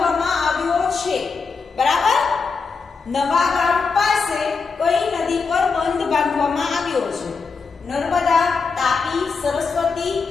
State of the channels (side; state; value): right; quieter; 4.9 dB